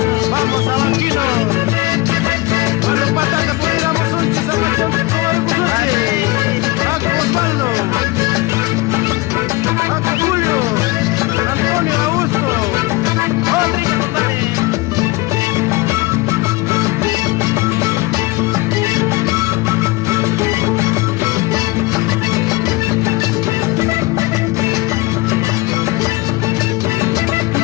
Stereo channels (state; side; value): quieter; right; 21.7 dB